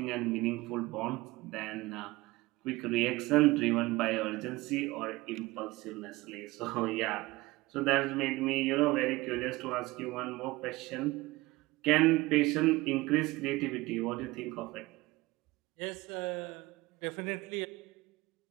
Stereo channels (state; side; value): quieter; left; 20.5 dB